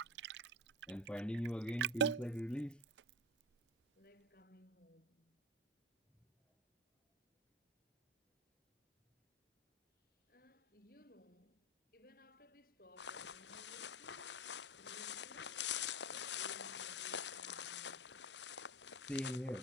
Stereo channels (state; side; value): normal; both; correlation 0.25